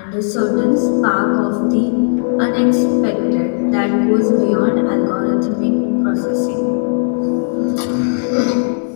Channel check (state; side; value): silent; right; 61 dB below the other